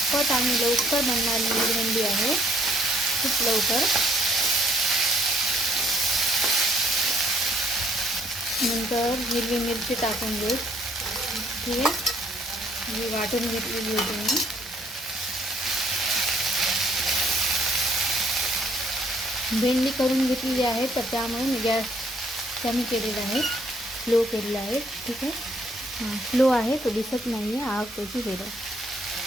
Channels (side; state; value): both; normal; correlation 0.65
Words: आणि लवकर बनणारी भेंडी आहे, खूप लवकर। नंतर हिरवी मिरची टाकून घेऊ, ठीक आहे। ही वाटून घेतलेली होती मी। भेंडी करून घेतलेली आहे, तर त्यामुळे मी गॅस कमी केलेला आहे, स्लो केलेला आहे, ठीक आहे। स्लो आहे, तो दिसत नाही आहे आग त्याची वेगळं।